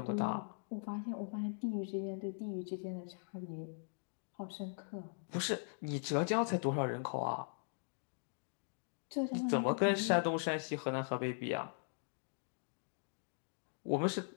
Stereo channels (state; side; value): silent; right; digital silence